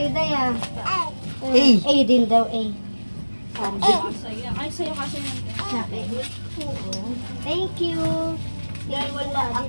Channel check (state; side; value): inverted; both; correlation -1.00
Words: Day ah. Hey. A din daw, A. Ay, sa'yo kasi yun. Sa akin. Oo. Thank you. Dahil wala